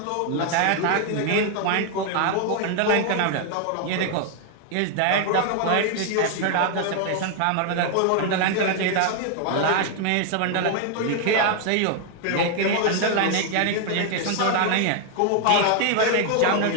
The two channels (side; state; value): both; different; correlation 0.00